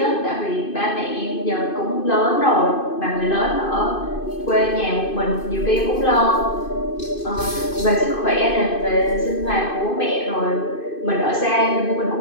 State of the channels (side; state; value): right; late; 2.5 ms